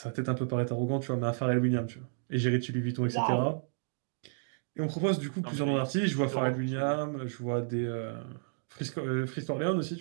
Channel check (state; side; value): silent; left; digital silence